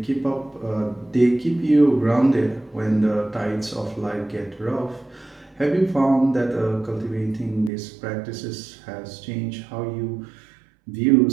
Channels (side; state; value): left; drops out; at 7.7 s